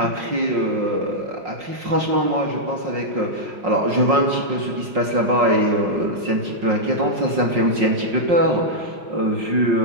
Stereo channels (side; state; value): left; late; 5.5 ms